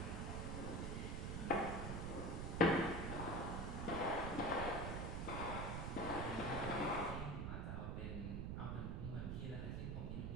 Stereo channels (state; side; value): noise; right; rumble, 1 dB below the sound